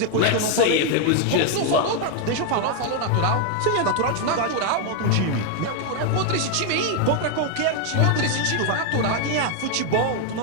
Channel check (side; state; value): both; different; correlation 0.00